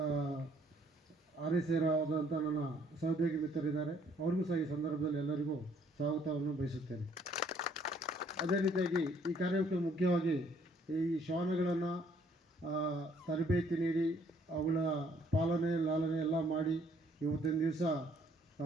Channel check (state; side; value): normal; both; correlation 0.63